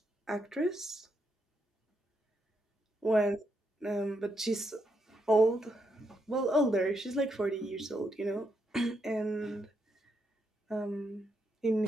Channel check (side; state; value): both; normal; correlation 0.80